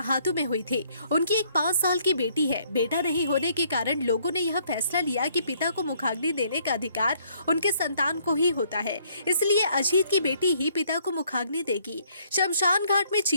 में हुई थी। उनकी एक 5 साल की बेटी है। बेटा नहीं होने के कारण लोगों ने यह फैसला लिया कि पिता को मुखाग्नि देने का अधिकार उनके संतान को ही होता है, इसलिए अजीत की बेटी ही पिता को मुखाग्नि देगी। शमशान घाट में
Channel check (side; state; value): both; inverted; correlation -0.66